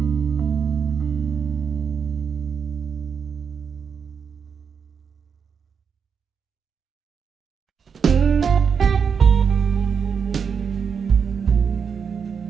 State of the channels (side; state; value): left; quieter; 6.5 dB